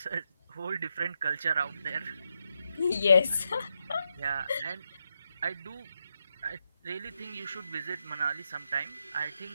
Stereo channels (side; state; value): both; inverted; correlation -0.84